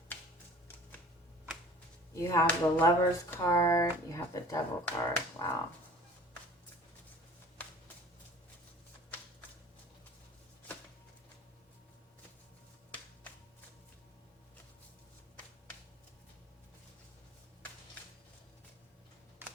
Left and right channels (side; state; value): both; normal; correlation 0.46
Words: You have the Lover's card, you have the Devil card. Wow.